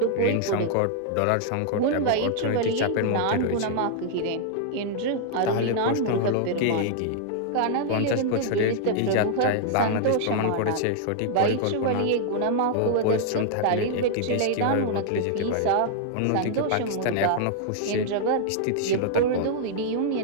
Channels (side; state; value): both; different; correlation -0.01